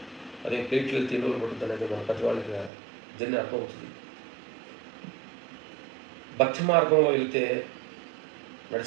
అదే ప్లేట్లు వెళ్తే 2 రోజులు పడుతుంది అనేది మన ప్రతి వాళ్ళకి జర్నీ అర్థమవుతుంది. భక్తి మార్గంలో వెళ్తే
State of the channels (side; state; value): left; drops out; at 2.7 s